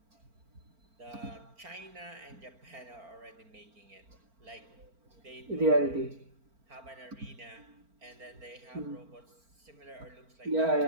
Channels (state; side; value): late; left; 4.4 ms